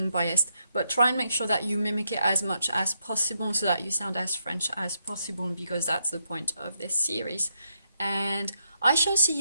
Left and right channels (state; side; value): inverted; both; correlation -0.79